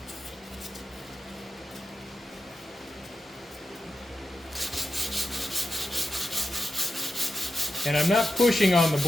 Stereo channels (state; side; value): normal; both; correlation 0.90